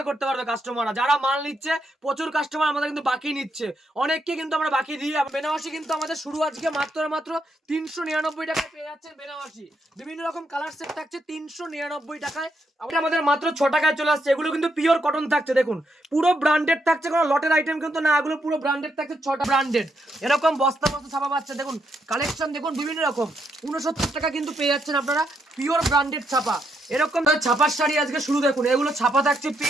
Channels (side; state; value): both; normal; correlation 0.79